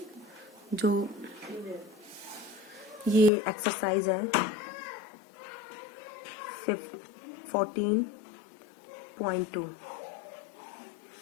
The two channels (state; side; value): drops out; right; at 3.3 s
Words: जो ये एक्सरसाइज है 14.2,